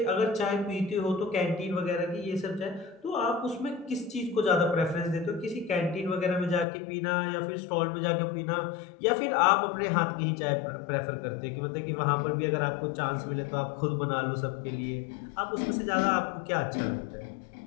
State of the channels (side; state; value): right; drops out; at 6.7 s